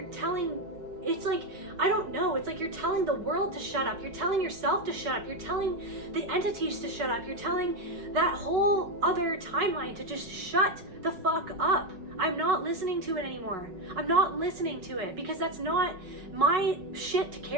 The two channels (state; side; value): late; left; 5.4 ms